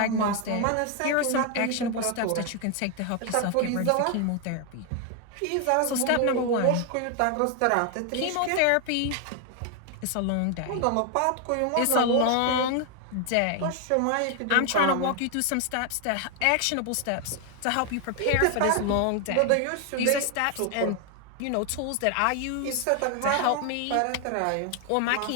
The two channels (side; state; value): both; different; correlation 0.01